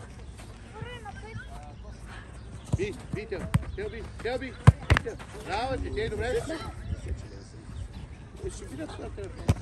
Телби. Браво ти, те добре. Ще видят това телефон.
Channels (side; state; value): both; identical; correlation 1.00